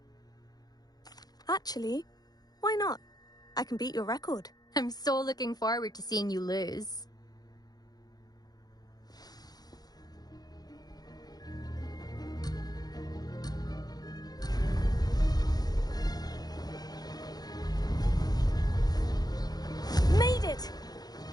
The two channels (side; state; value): right; late; 0.19 ms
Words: Actually, why not? I can beat your record. I'm so looking forward to seeing you lose. Made it!